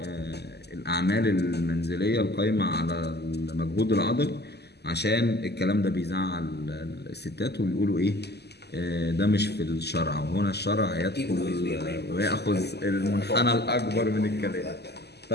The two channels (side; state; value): right; late; 0.48 ms